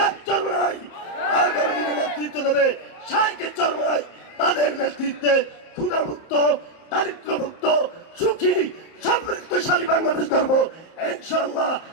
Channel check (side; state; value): right; late; 30 ms